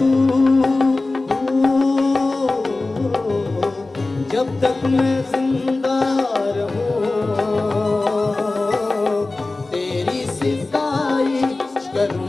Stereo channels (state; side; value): quieter; right; 3.2 dB